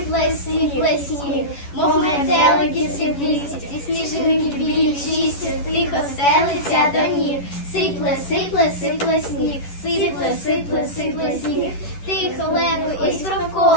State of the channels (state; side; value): late; right; 11 ms